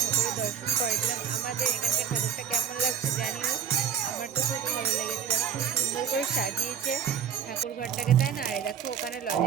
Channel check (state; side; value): quieter; left; 8.2 dB